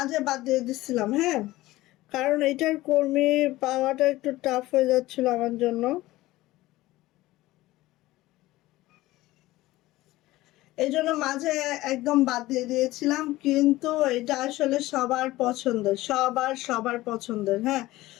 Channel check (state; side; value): quieter; right; 17.7 dB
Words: বাদ দিয়ে দিচ্ছিলাম, হ্যাঁ, কারণ এটার কর্মী পাওয়াটা একটু টাফ হয়ে যাচ্ছিল আমার জন্য। এই জন্য মাঝে একদম বাদ দিয়ে দিয়েছিলাম, কিন্তু এটা আসলে সবার পছন্দের, সবার পছন্দের, হ্যাঁ।